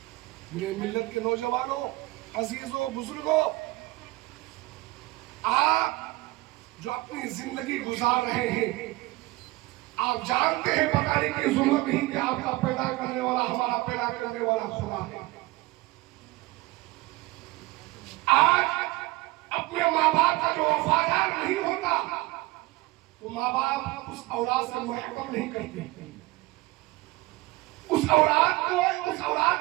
میرے ملت کے نوجوانوں، عزیزوں، بزرگوں، آپ جو اپنی زندگی گزار رہے ہیں، آپ جانتے ہیں بتانے کی ضرورت نہیں کہ آپ کا پیدا کرنے والا، ہمارا پیدا کرنے والا خدا ہے۔ آج اپنے ماں باپ کا جو وفادار نہیں ہوتا تو ماں باپ اس اولاد سے محبت نہیں کرتے، اس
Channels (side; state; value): left; quieter; 20.7 dB